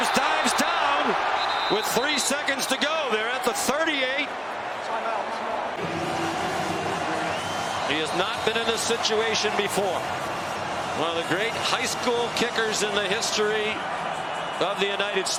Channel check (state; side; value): identical; both; correlation 1.00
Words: dives down. situation before. One of the great high school kickers in the history of the United